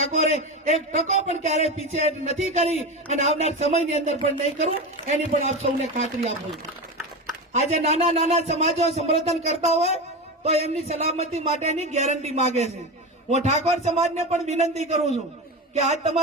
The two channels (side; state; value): both; normal; correlation 0.21